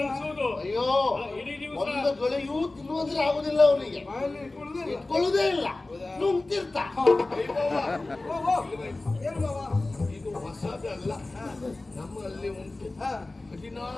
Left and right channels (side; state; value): right; quieter; 3.0 dB